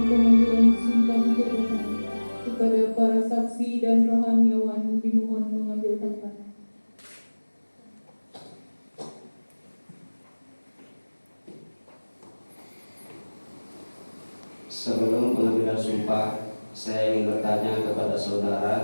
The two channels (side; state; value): both; inverted; correlation -1.00